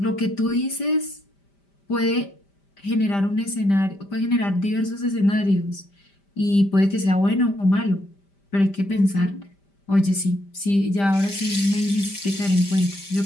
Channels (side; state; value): right; late; 5.1 ms